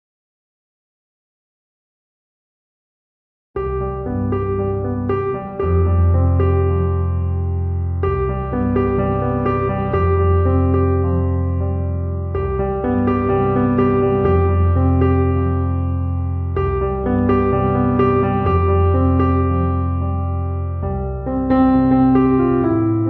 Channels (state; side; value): identical; both; correlation 1.00